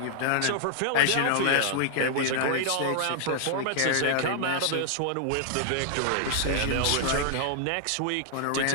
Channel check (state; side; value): different; both; correlation 0.00